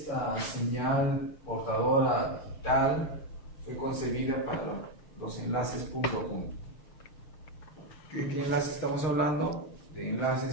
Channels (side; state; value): right; late; 6.8 ms